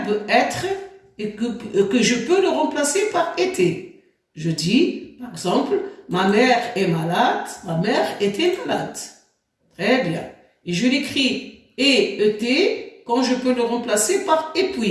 être et que je peux le remplacer par été. Je dis, par exemple, ma mère est malade, ma mère était malade. Très bien. Et je l'écris ET quand je peux le remplacer par et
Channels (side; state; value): both; identical; correlation 1.00